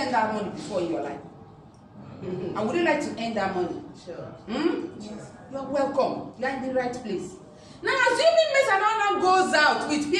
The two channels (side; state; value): both; identical; correlation 1.00